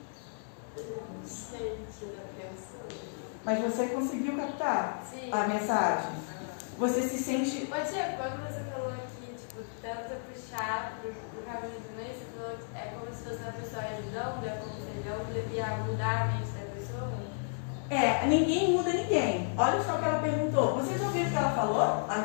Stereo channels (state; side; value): silent; right; digital silence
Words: Não sei o que eu penso. Mas você conseguiu captar a mensagem? Você se sente... Ô tia, quando você falou aqui, tipo, tenta puxar pro caminho do meio, você falou que é como se fosse uma pessoa ajudando, é como se ele devia mudar a mente da pessoa? Ninguém muda ninguém. Olha só o que ela perguntou. Vocês ouviram o que ela falou